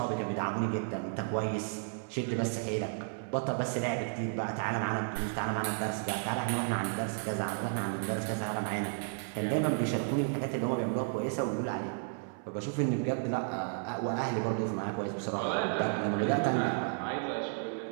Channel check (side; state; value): left; silent; 56 dB below the other